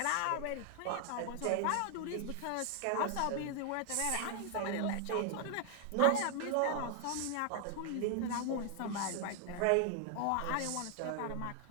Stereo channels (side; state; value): both; different; correlation 0.00